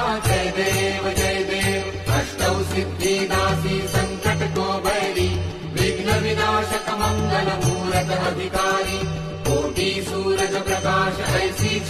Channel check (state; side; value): identical; both; correlation 1.00